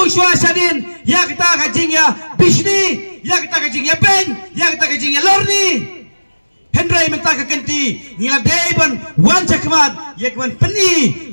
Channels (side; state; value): both; inverted; correlation -1.00